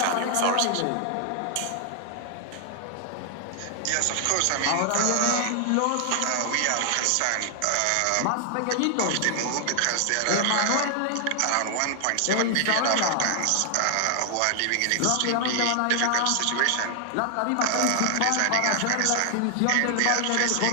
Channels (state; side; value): different; both; correlation 0.00